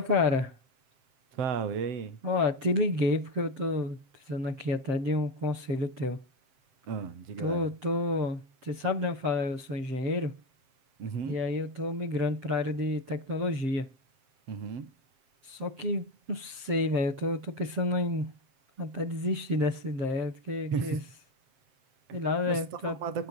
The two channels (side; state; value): left; late; 7.6 ms